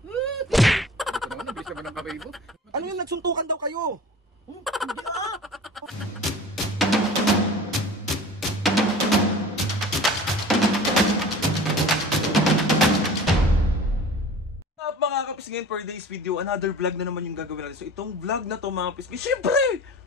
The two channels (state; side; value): normal; both; correlation 0.41